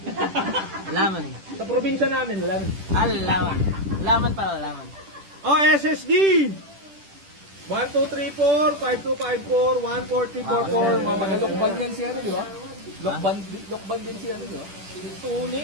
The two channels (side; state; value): left; late; 10 ms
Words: Laman. Sa probinsya namin, lemon. Laman. Laman pala, laman. Oh, SSD! 1234, 5254, 14344. Lokban yan si ano, di ba? Lokban din si ano, di ba?